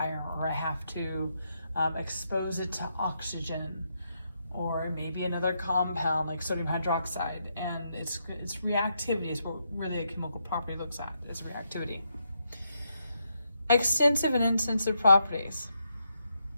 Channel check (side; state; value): both; inverted; correlation -0.80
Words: or I have to expose it to oxygen, or maybe another compound like sodium hydroxide, and it's reactivity is what really a chemical property looks at, is reactivity. Extensive and intensive properties.